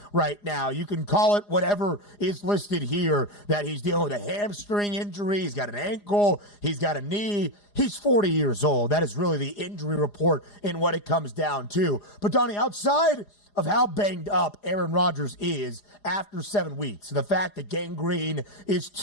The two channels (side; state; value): right; late; 4.9 ms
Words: right now. You can call it whatever is listed here, that he's dealing with a hamstring injury, he's got an ankle, he's got a knee. He's 40 years old. That is really the injury report in what it comes down to. But, Donnie, outside of how banged up Aaron Rodgers is after 7 weeks, the fact that gangrene is